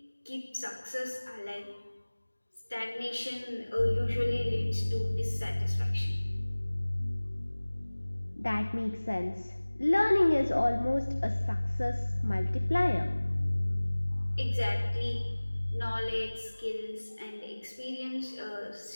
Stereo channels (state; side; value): inverted; both; correlation -1.00